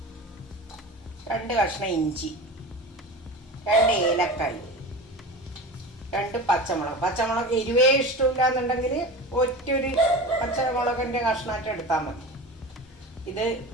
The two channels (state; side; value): normal; both; correlation 0.31